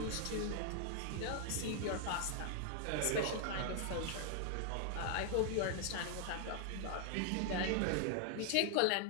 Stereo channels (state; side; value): different; both; correlation 0.00